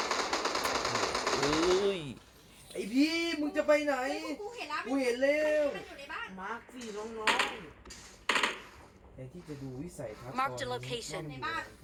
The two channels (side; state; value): both; identical; correlation 1.00